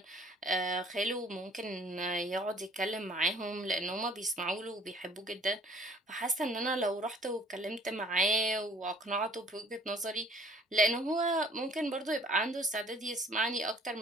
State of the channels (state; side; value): normal; both; correlation 0.56